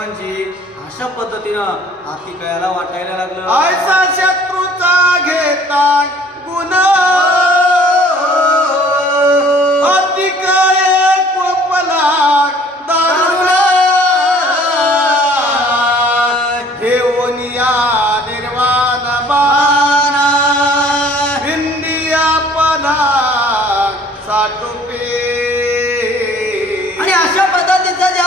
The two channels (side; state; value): both; normal; correlation 0.54